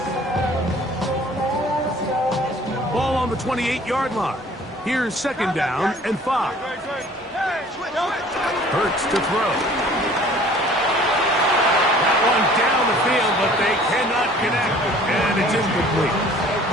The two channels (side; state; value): both; normal; correlation 0.51